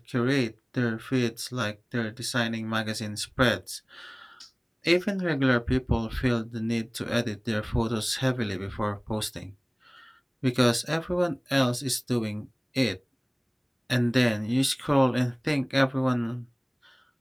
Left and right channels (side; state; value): both; identical; correlation 1.00